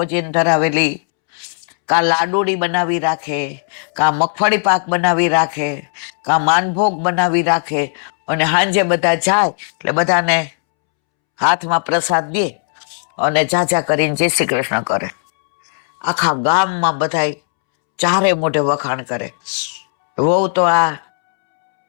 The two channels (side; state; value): right; silent; 69 dB below the other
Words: ધરાવેલી, કાં લાડુડી બનાવી રાખે, કાં મગફળી પાક બનાવી રાખે, કાં માનભોગ બનાવી રાખે. અને સાંજે બધા જાય એટલે બધાને હાથમાં પ્રસાદ દે અને જાજા કરીને જય શ્રી કૃષ્ણ કરે. આખા ગામમાં બધા ચારે મોઢે વખાણ કરે, વહુ તો આ